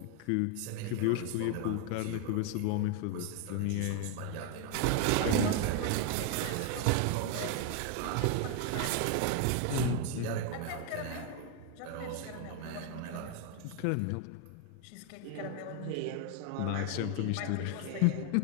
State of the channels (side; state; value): both; different; correlation 0.00